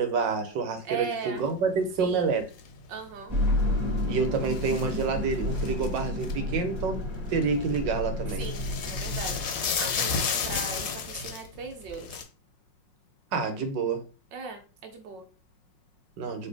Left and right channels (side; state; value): left; late; 5.5 ms